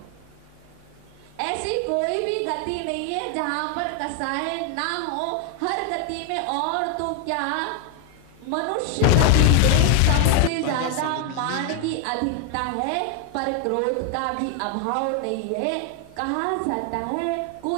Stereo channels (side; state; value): both; different; correlation 0.01